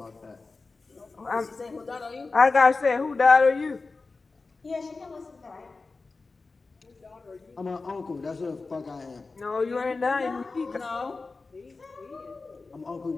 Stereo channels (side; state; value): right; quieter; 3.9 dB